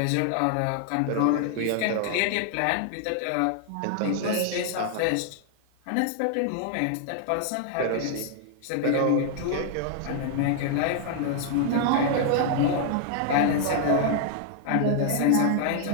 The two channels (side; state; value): both; different; correlation 0.00